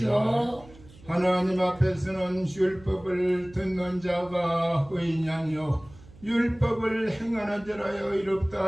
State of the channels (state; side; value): noise; right; hum, 22 dB below the sound